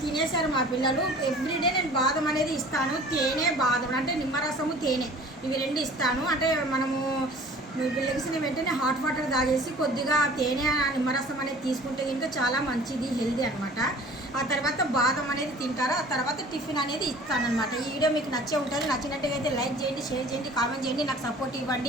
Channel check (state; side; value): normal; both; correlation 0.47